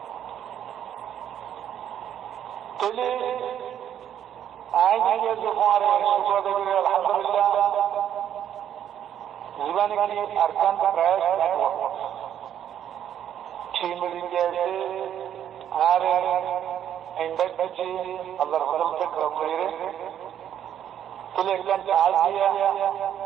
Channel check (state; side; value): quieter; left; 10.0 dB